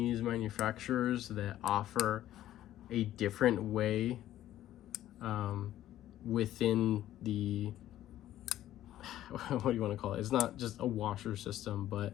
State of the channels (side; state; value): right; quieter; 13.1 dB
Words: manufacturers that offer a different way within the, what do you want to call it? It's not just a washer system, but